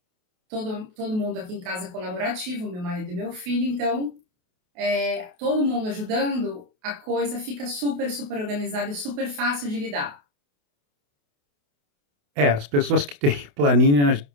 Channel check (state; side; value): late; left; 28 ms